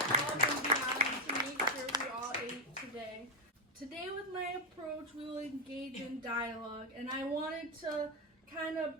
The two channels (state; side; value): normal; both; correlation 0.01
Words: above and beyond to make sure we all ate today. Today with my approach, we will engage in dialogue, and I wanted to kind